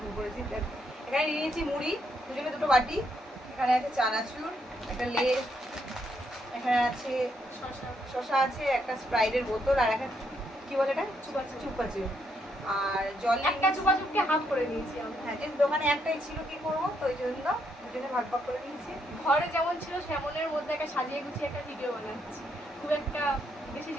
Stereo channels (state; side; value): normal; both; correlation 0.76